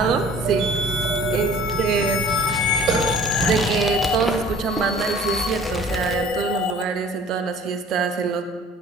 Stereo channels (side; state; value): both; normal; correlation 0.49